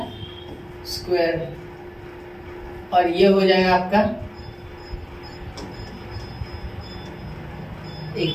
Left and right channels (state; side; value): identical; both; correlation 1.00